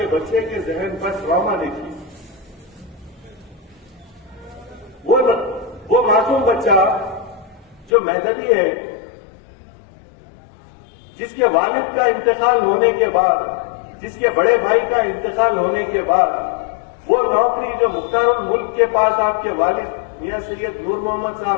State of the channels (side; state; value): right; drops out; at 7.9 s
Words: بچے کے ذہن پر ٹراما دیکھیے۔ وہ معصوم بچہ جو مہدوی ہے، جس کے والد کا انتقال ہونے کے بعد، جس کے بڑے بھائی کا انتقال ہونے کے بعد وہ نوکری جو مختار الملک کے پاس آپ کے والد میاں سید نور محمد